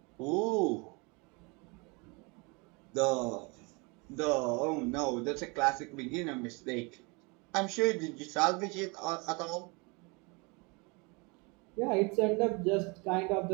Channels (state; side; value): quieter; left; 29.3 dB